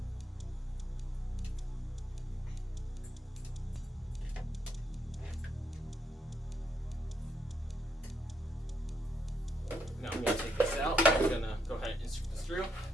Now I'm going to take this out. I'm going to go ahead and insert this through.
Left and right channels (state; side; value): normal; both; correlation 0.77